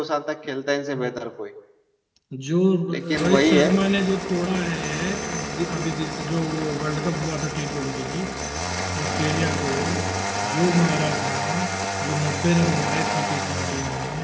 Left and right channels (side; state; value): both; identical; correlation 1.00